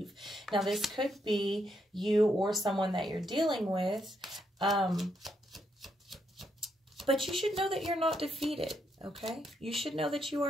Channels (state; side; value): normal; both; correlation 0.78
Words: Now this could be you or someone that you're dealing with, but you should know that you're not defeated, okay? You should know that you